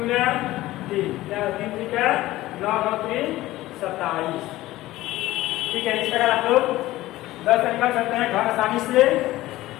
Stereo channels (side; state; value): right; quieter; 16.7 dB